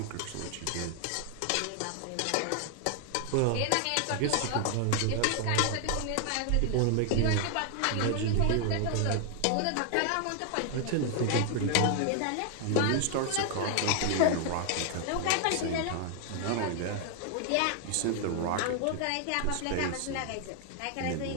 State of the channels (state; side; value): different; both; correlation 0.00